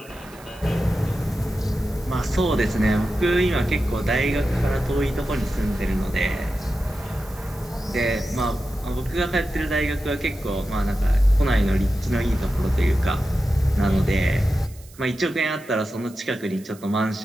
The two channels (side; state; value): right; noise; hiss, 23 dB below the sound